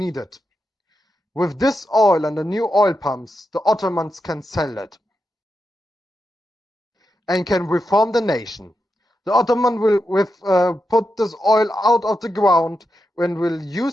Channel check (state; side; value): normal; both; correlation 0.87